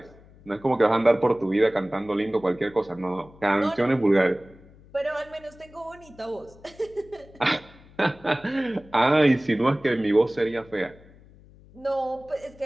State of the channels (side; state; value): left; noise; hum, 24 dB below the sound